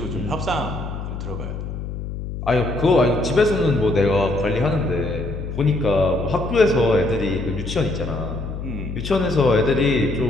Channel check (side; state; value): left; noise; hum, 7 dB below the sound